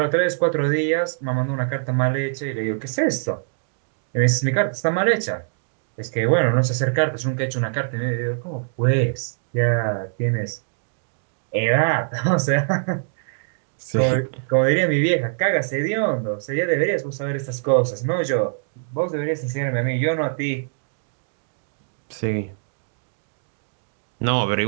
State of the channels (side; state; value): left; silent; digital silence